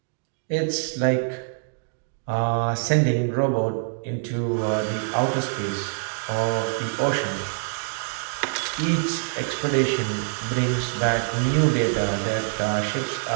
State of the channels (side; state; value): left; silent; digital silence